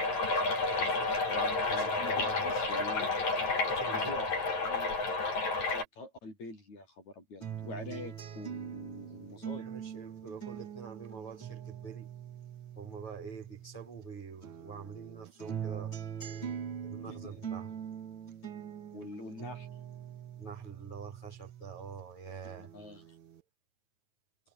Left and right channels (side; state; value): right; late; 9.3 ms